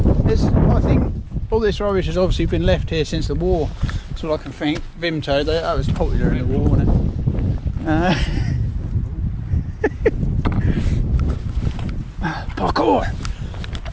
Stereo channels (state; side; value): identical; both; correlation 1.00